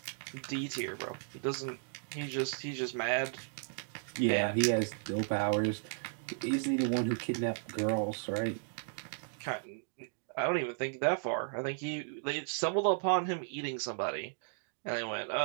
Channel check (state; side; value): silent; left; digital silence